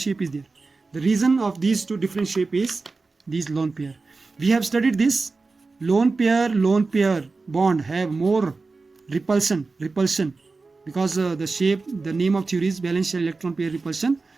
is there? The reason of these two different shape is these lone pair. We have studied this. Lone pair bond have more repulsion because the name of theory is valence shell electron pair repulsion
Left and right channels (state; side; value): quieter; left; 3.9 dB